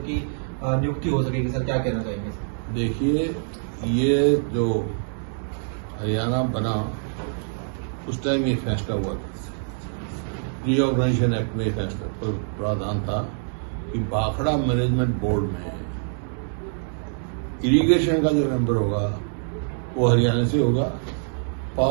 की नियुक्ति हो सकेगी। सर, क्या कहना चाहेंगे? देखिए, ये जो हरियाणा बना उस टाइम ये फैसला हुआ था, रीऑर्गेनाइजेशन एक्ट में फैसला प्रावधान था कि भाखड़ा मैनेजमेंट बोर्ड में इरिगेशन का जो मेंबर होगा वो हरियाणा से होगा,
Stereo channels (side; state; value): left; silent; digital silence